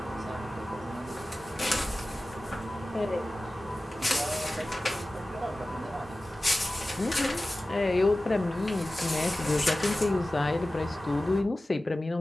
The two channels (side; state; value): both; normal; correlation 0.96